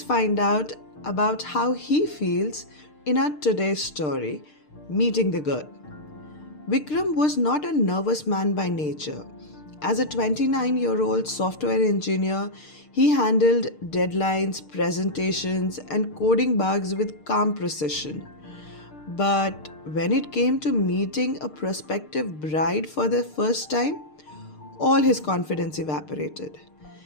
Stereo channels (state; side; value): late; right; 6.6 ms